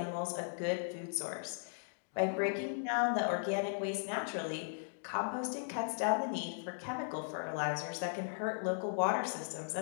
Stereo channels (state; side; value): silent; right; digital silence